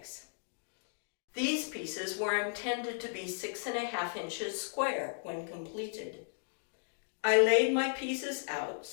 These pieces were intended to be 6½ inches square when completed. I laid my pieces out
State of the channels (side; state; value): right; silent; digital silence